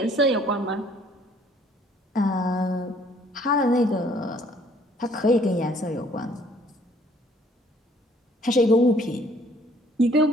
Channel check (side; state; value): both; normal; correlation 0.60